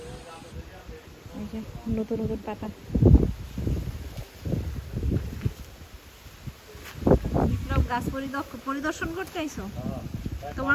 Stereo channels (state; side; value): identical; both; correlation 1.00